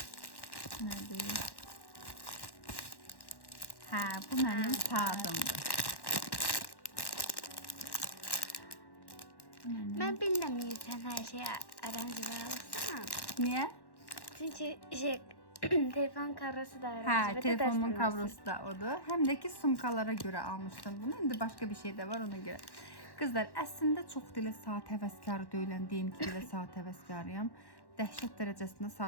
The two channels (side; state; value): right; late; 1.1 ms